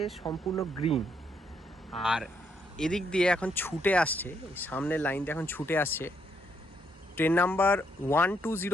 সম্পূর্ণ গ্রিন। আর এদিক দিয়ে এখন ছুটে আসছে, এই সামনের লাইন দিয়ে এখন ছুটে আসছে ট্রেন নাম্বার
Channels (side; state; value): both; normal; correlation 0.74